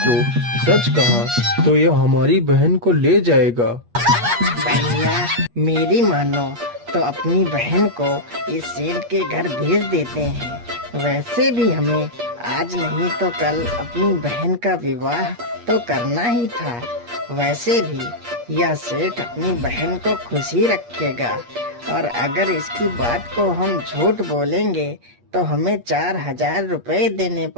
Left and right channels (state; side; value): late; left; 8.4 ms